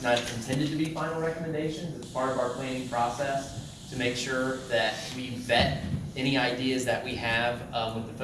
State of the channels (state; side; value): identical; both; correlation 1.00